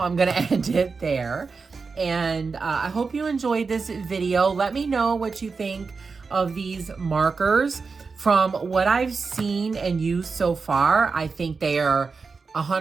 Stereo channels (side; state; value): left; quieter; 4.7 dB